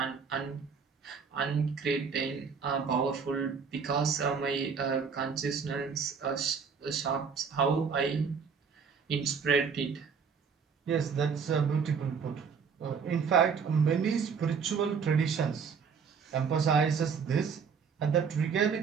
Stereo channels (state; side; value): quieter; left; 6.0 dB